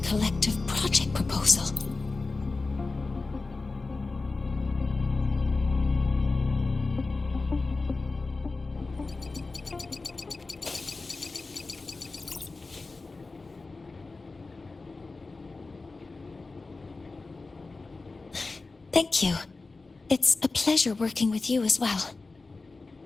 Collective project proposal. Thank you. It's a pleasure working with you as well.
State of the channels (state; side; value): quieter; right; 3.7 dB